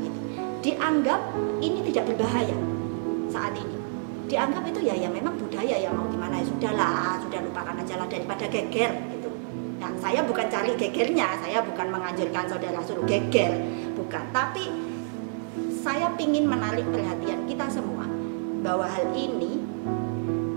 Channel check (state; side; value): silent; left; 55 dB below the other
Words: itu. Dianggap ini tidak berbahaya saat ini. Dianggap itu ya memang budaya, ya mau gimana, ya sudahlah, sudah lupakan aja lah daripada geger gitu. Nah, saya bukan cari gegernya, saya bukan menganjurkan saudara suruh geger, bukan. Tapi saya ingin menarik perhatian kita semua bahwa hal ini